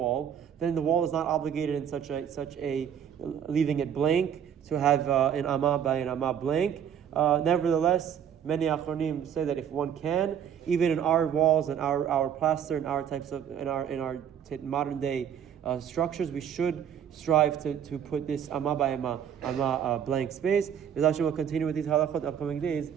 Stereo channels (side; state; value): left; quieter; 8.9 dB